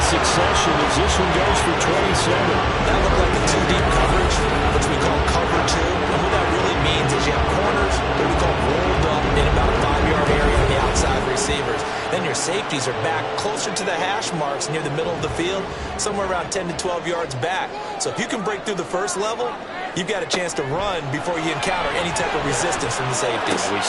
succession as this one goes for 27. That looked like a two-deep coverage, which we call cover two. And what that really means is you have corners that we call rolled up in about a 5-yard area on the outside receivers. Then your safeties are back closer to the hash marks near the middle of the field, somewhere around 10 to 12 yards back. So if you can break through the first level, you've got a chance to run before you encounter any type of resistance from the safeties. We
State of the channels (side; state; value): both; identical; correlation 1.00